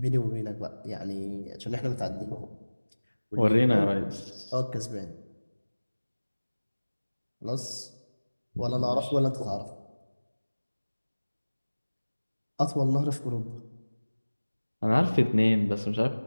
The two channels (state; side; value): inverted; both; correlation -1.00